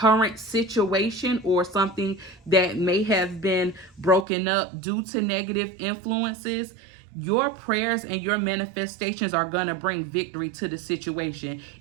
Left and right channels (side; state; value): left; drops out; at 4.2 s